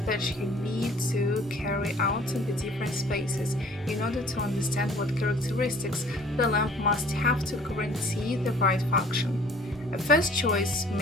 that you need to carry out in the different spaces, in order to understand what characteristics the lamp must have to guarantee the right function. A first choice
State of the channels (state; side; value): normal; both; correlation 0.53